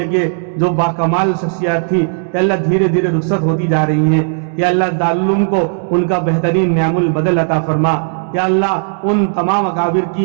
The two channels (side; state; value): left; silent; digital silence